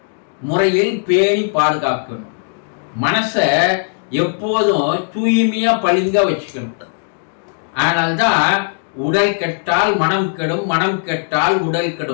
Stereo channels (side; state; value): right; silent; digital silence